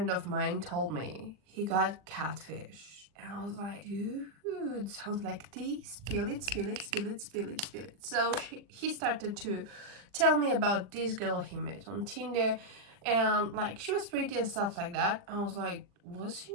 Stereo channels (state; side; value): late; left; 40 ms